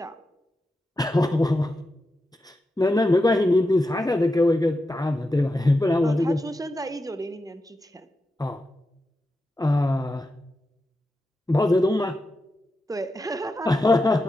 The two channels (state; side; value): normal; both; correlation 0.89